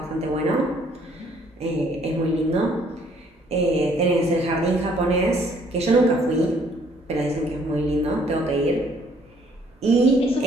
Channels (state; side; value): normal; both; correlation 0.63